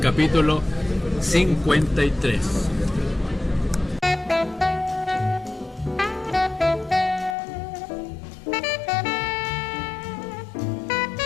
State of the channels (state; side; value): drops out; right; at 7.4 s